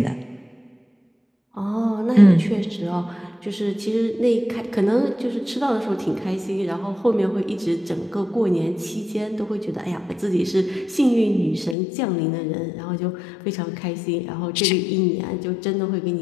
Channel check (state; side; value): drops out; right; at 11.8 s